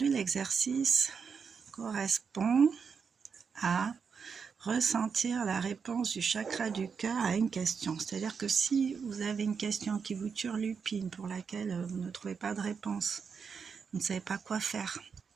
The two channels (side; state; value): left; quieter; 6.0 dB